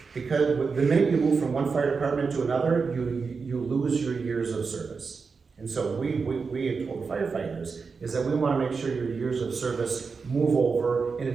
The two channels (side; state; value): left; quieter; 5.0 dB